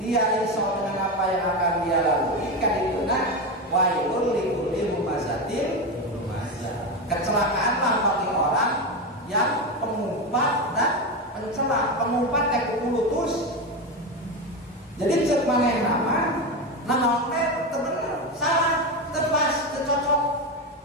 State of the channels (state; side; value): normal; both; correlation 0.16